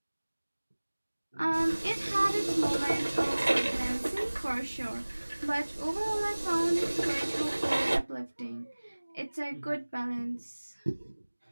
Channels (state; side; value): inverted; both; correlation -1.00